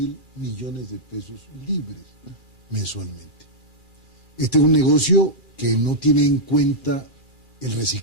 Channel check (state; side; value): late; left; 2.4 ms